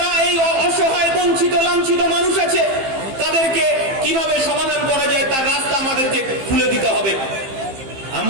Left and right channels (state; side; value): late; left; 15 ms